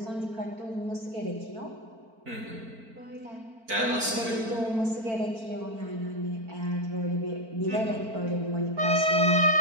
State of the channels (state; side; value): late; left; 4.5 ms